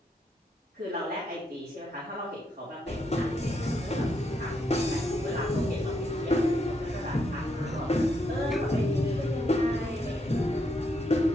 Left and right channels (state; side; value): normal; both; correlation 0.77